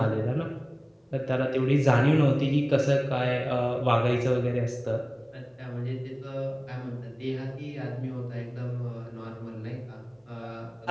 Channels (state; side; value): identical; both; correlation 1.00